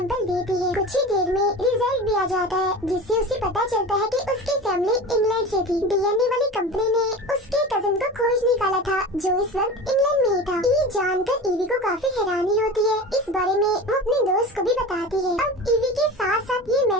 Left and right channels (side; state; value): both; normal; correlation 0.32